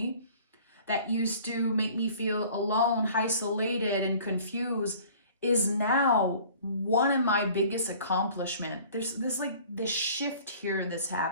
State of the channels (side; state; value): both; inverted; correlation -0.49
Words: that used to make me feel alone, isolated, and confused, is now one of my biggest accomplishments. There's this shift here that's